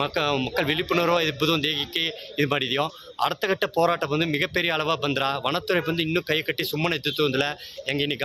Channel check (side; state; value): both; identical; correlation 1.00